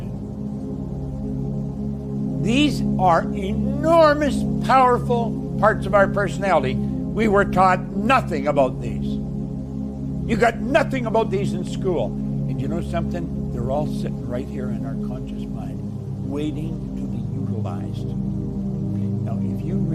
These are enormous, powerful parts of our personality. We were taught nothing about these. You got nothing about these in school. And you know something? They're all sitting right here in our conscious mind, waiting to be utilized. Now, if you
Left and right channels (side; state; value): both; identical; correlation 1.00